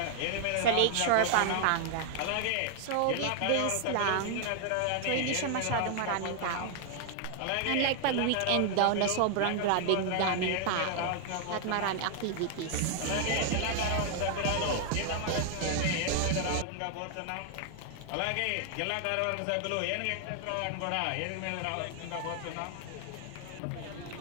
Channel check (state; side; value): different; both; correlation 0.00